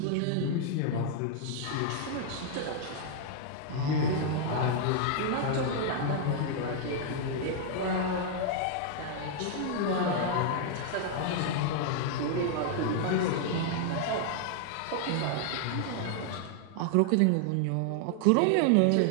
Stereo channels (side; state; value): both; different; correlation 0.00